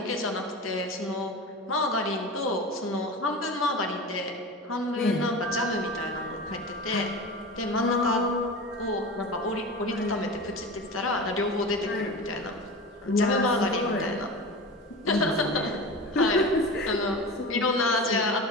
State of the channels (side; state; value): both; normal; correlation 0.30